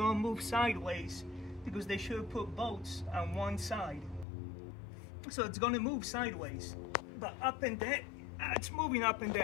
to move sideways because they should have put bolts on one side. So it's going to move sideways. But up and down, it's moving up and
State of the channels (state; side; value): drops out; right; at 4.2 s